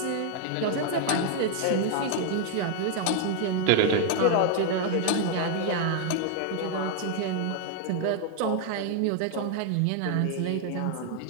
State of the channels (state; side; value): different; both; correlation 0.00